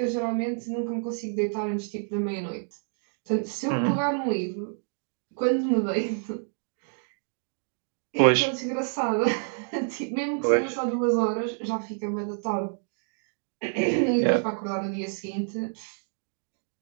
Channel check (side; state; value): left; silent; 59 dB below the other